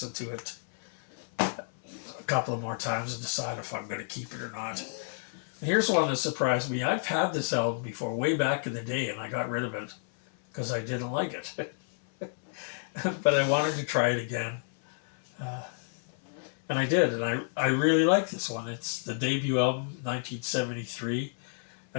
to it a couple of more times and decide if I'm going to keep it or not. And here's one that surprised me. I've had this album before, way back in the day, and I got rid of it because I didn't like it. But I wanted to try it again. And I did, and I really like this one. It's the debut album, 1973.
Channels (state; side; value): silent; right; 57 dB below the other